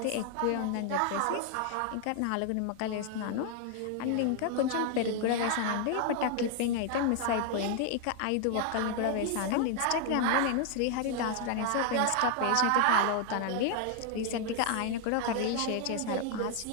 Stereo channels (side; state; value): both; different; correlation 0.00